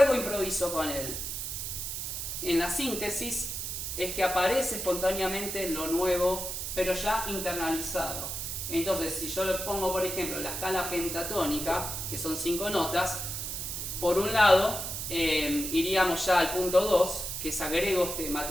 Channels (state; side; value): noise; right; hiss, 4 dB below the sound